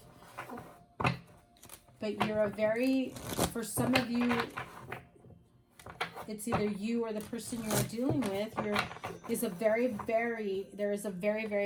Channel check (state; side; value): identical; both; correlation 1.00